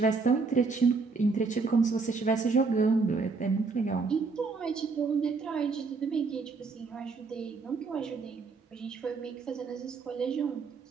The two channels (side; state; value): left; quieter; 4.5 dB